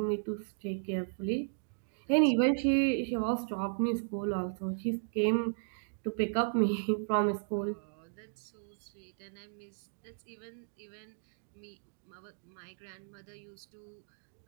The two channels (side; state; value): left; silent; digital silence